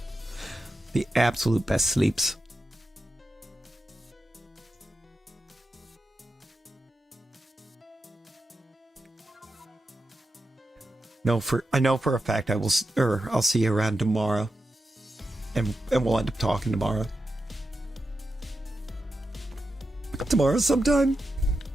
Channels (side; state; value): both; normal; correlation 0.89